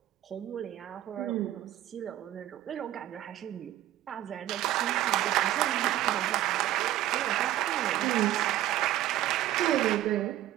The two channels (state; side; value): quieter; left; 13.7 dB